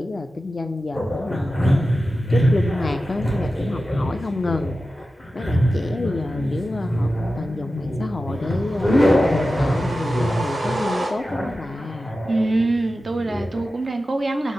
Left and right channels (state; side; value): normal; both; correlation 0.93